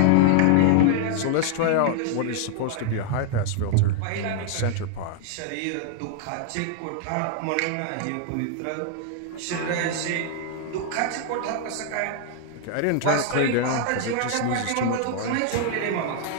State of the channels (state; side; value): different; both; correlation 0.00